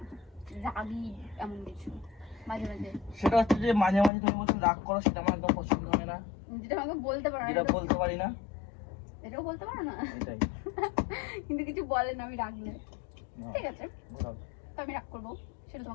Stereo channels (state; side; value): drops out; right; at 4.1 s